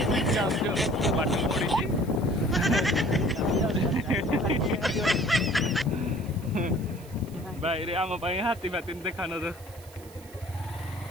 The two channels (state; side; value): noise; right; hiss, 23 dB below the sound